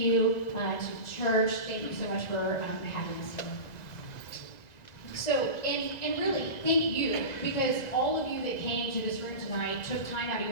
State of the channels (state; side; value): late; right; 2.0 ms